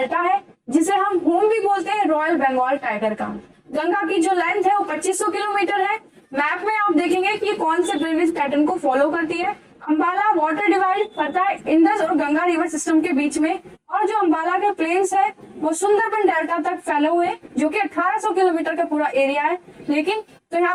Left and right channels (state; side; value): identical; both; correlation 1.00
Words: है, जिसे हम होम भी बोलते हैं रॉयल बंगाल टाइगर का। गंगा की जो लेंथ है वो 2500 किलोमीटर है। मैप में आप देखेंगे कि कौन से ड्रेनेज पैटर्न को फॉलो करती है। अंबाला वाटर डिवाइड करता है इंडस और गंगा रिवर सिस्टम के बीच में, और जो अंबाला के प्लेन्स है वो सुंदरबन डेल्टा तक फैले हुए, जो कि 1800 किलोमीटर का पूरा एरिया है। लेकिन तो यहाँ